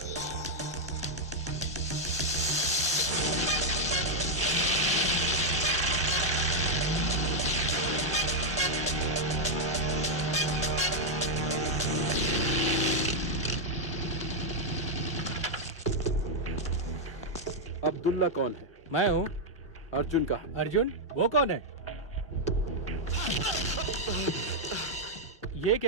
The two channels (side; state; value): both; normal; correlation 0.00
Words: अब्दुल्ला कौन है? मैं हूँ। अर्जुन का? अर्जुन? वो कौन है? ये